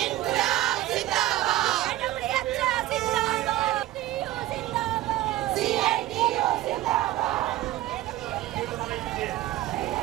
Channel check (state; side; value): quieter; left; 15.4 dB